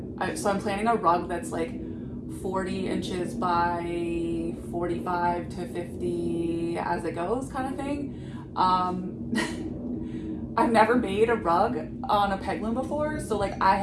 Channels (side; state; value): both; identical; correlation 1.00